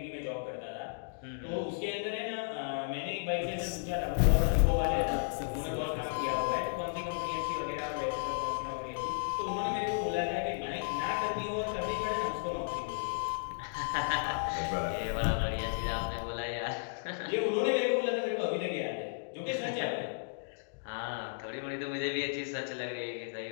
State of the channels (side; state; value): right; silent; digital silence